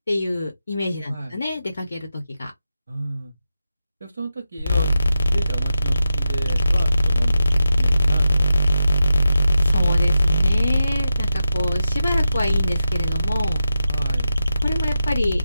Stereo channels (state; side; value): inverted; both; correlation -0.88